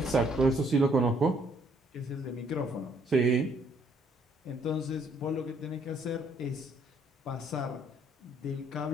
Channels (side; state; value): both; normal; correlation 0.66